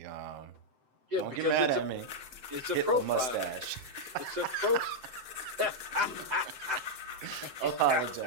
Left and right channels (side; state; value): left; late; 7.8 ms